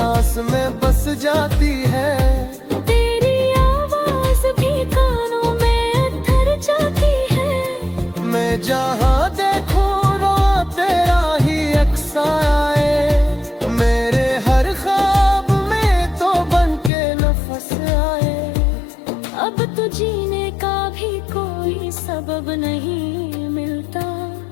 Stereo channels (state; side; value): drops out; right; at 16.9 s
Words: में बस जाती है। तेरी आवाज भी कानों में उतर जाती है। मैं जहाँ देखूं रो तेरा ही अक्स आए। मेरे हर ख्वाब में तो बन के नफस आए। अब तो जीने का भी कोई सबब नहीं मिलता।